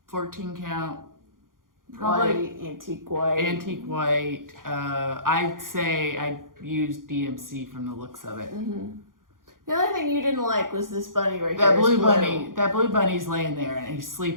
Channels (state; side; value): late; left; 0.90 ms